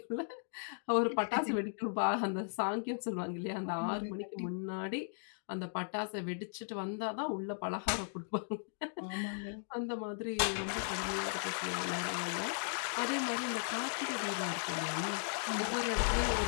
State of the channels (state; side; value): silent; right; digital silence